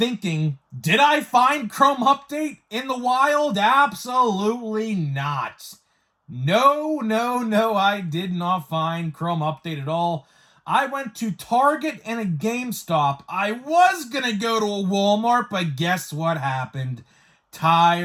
did I find Chrome Update in the wild? Absolutely not. No, I did not find Chrome Update at all. I went to Target and a GameStop. I was going to go to a Walmart, but guess what happened?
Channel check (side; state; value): both; identical; correlation 1.00